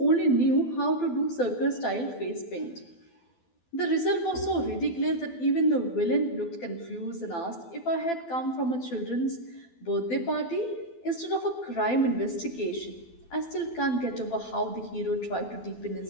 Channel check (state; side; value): late; right; 12 ms